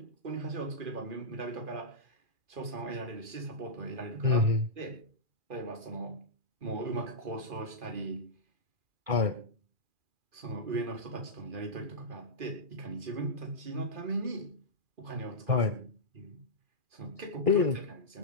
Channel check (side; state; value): left; late; 2.5 ms